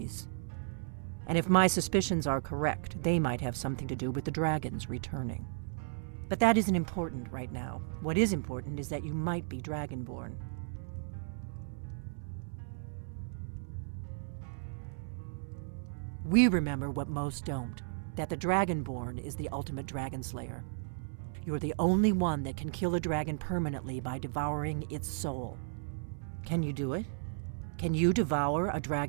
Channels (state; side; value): silent; left; 55 dB below the other